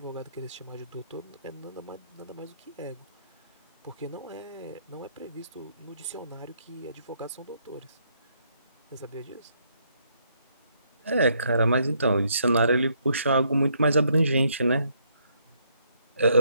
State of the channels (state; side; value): inverted; both; correlation -0.72